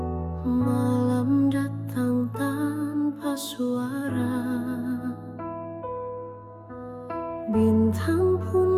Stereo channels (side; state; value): both; identical; correlation 1.00